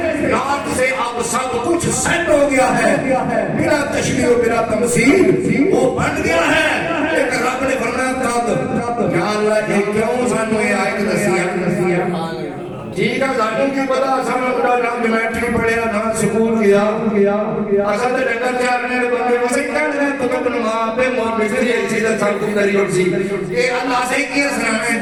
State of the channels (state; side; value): identical; both; correlation 1.00